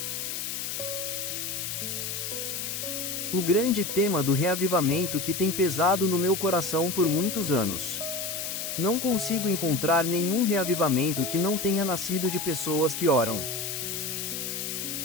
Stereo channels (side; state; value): left; noise; hiss, 4 dB below the sound